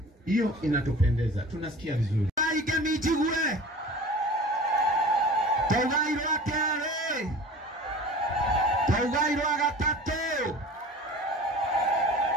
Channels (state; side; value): normal; both; correlation 0.40